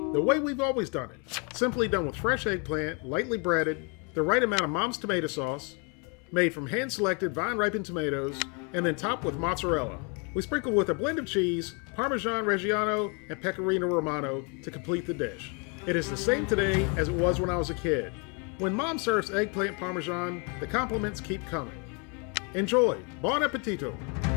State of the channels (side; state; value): right; quieter; 34.5 dB